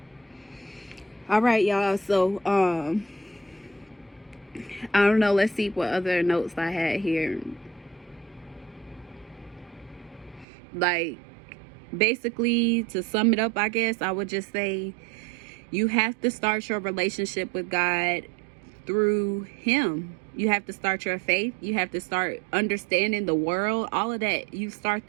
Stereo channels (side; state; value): left; drops out; at 10.5 s